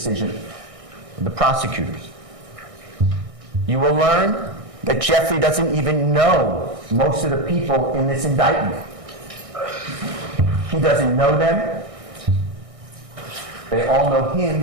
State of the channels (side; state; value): left; late; 1.6 ms